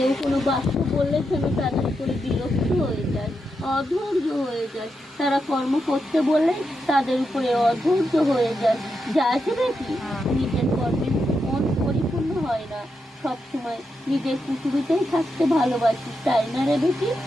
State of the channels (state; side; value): normal; both; correlation 0.85